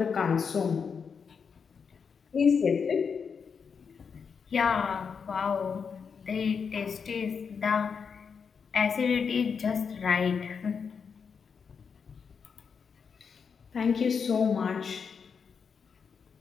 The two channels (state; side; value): quieter; right; 6.1 dB